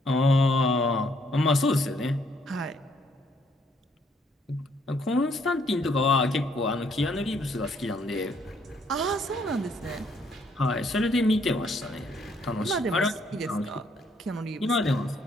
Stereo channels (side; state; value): both; normal; correlation 0.68